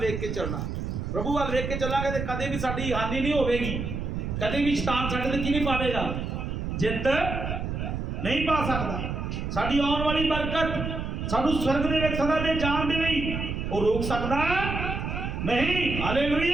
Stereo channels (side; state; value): right; noise; rumble, 4 dB below the sound